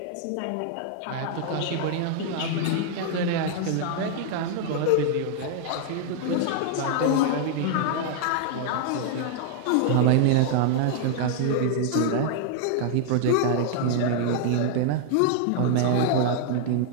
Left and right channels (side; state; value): both; different; correlation -0.01